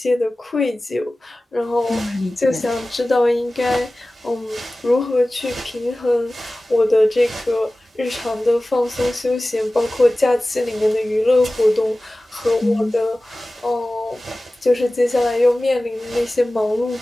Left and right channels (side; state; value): both; normal; correlation 0.97